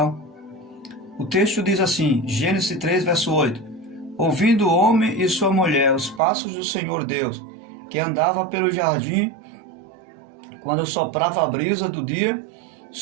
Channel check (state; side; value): drops out; left; at 6.2 s